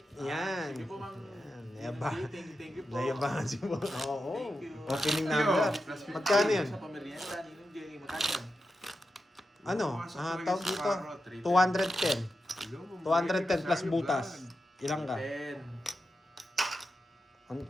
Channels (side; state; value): both; normal; correlation 0.89